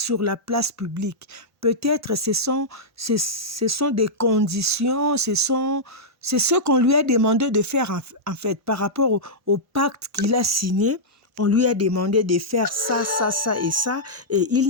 la place publique, peut-être ce sont des conditions, c'est ce qu'on lui a demandé de faire en fait, par rapport au pacte qu'il a signé. On lui a demandé de faire ça, ça, ça et ça, et il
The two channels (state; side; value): normal; both; correlation -0.10